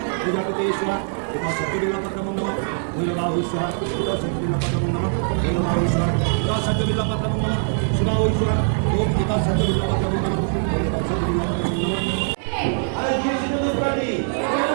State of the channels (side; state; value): left; silent; 62 dB below the other